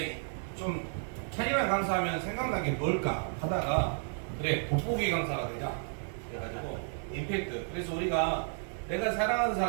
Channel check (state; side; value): silent; left; 56 dB below the other